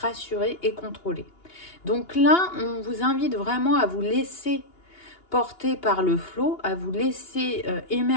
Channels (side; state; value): right; late; 2.8 ms